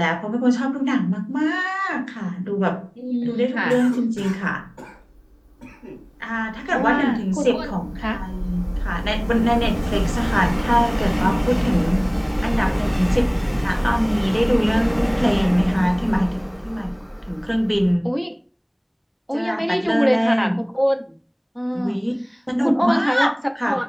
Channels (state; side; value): identical; both; correlation 1.00